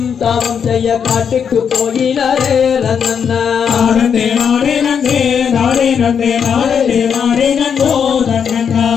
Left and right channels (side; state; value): right; quieter; 7.3 dB